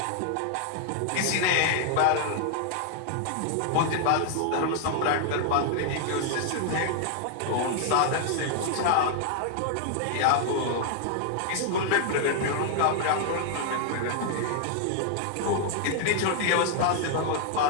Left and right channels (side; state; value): both; different; correlation -0.01